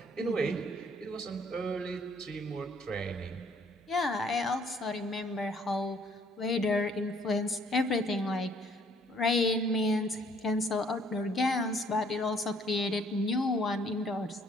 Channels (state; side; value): normal; both; correlation 0.62